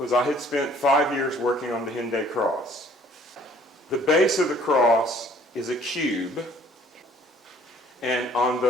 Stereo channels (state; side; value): normal; both; correlation 0.57